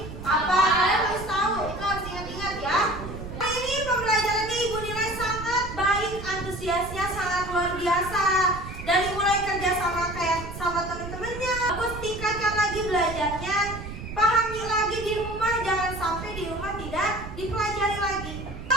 apa? Kalian harus tahu. Itu harus ingat-ingat ya. Hari ini pembelajarannya Ibu nilai sangat baik, antusiasnya sangat luar biasa. Dari mulai kerja sama kayak sama teman-temannya. Bagus, tingkatkan lagi belajarnya. Pahami lagi di rumah, jangan sampai di rumah tidak dipelajari lagi.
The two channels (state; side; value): noise; right; rumble, 10 dB below the sound